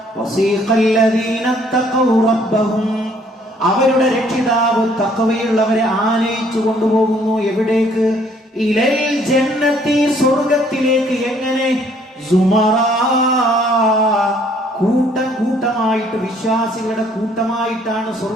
വസീഖല്ലദീന തഖൗ റബ്ബഹും, അവരുടെ രക്ഷിതാവ് തഖ്വയുള്ളവരെ ആനയിച്ചു കൊണ്ടുപോകുന്നു. എവിടേക്ക്? ഇലൽ ജന്നത്തി, സ്വർഗത്തിലേക്ക്. എങ്ങനെ? സുമറാ, കൂട്ടം കൂട്ടമായിട്ട്, വിശ്വാസികളുടെ കൂട്ടമായിട്ടാണ്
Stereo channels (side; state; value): both; normal; correlation 0.62